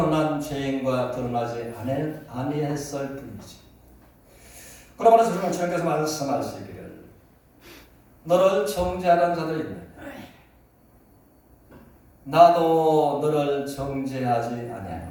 죄인과 드러나지 아니했을 뿐이지. 그러므로 주님께서 말씀하시기를 너를 정죄하는 자들이 있느냐? 나도 너를 정죄하지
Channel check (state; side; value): identical; both; correlation 1.00